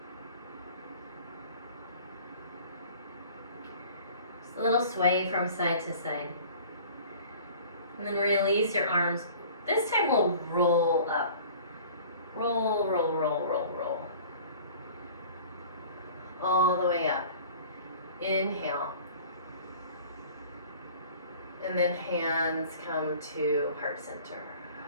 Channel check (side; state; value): both; inverted; correlation -0.46